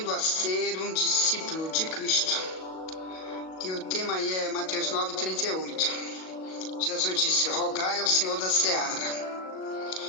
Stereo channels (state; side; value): late; right; 38 ms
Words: a ser um discípulo de Cristo. E o tema aí é Mateus 9:38. Jesus disse: rogai ao Senhor da seara,